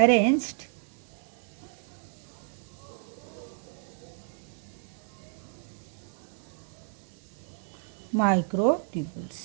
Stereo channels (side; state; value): left; silent; 57 dB below the other